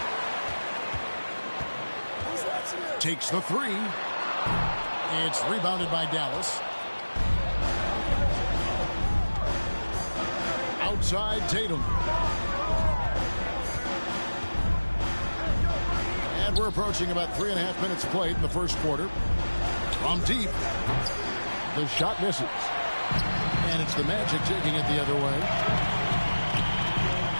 Takes the three. It's rebounded by Dallas. Outside Tatum. And we're approaching about 3.5 minutes played in the first quarter. From deep. The shot misses. And it's the Magic taking it the other way.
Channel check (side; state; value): both; inverted; correlation -1.00